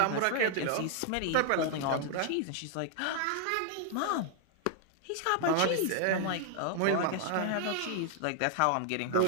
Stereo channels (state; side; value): different; both; correlation 0.00